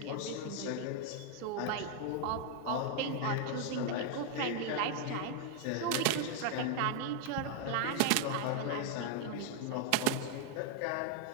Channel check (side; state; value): both; different; correlation 0.00